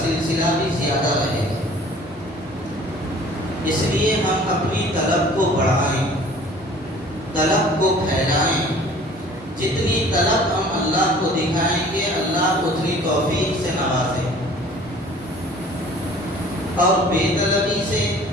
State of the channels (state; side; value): normal; both; correlation 0.49